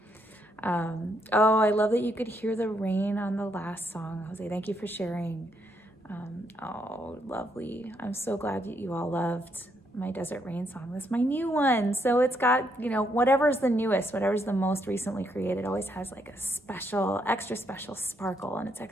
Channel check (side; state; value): both; normal; correlation 0.75